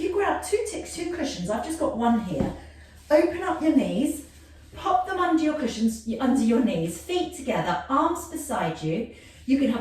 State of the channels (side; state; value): both; identical; correlation 1.00